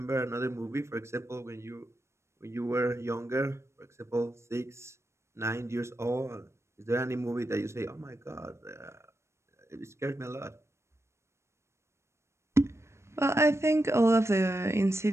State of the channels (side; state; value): left; late; 0.13 ms